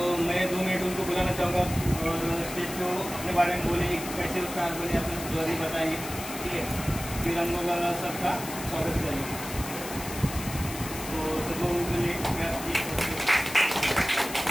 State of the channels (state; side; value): noise; left; hiss, 10 dB below the sound